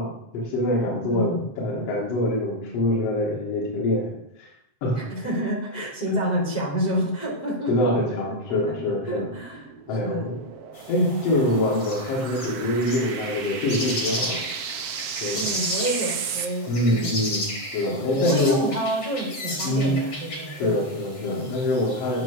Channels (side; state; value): right; late; 7.7 ms